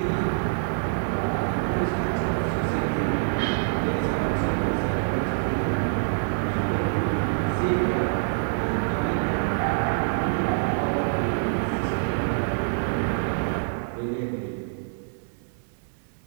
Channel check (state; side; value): silent; left; digital silence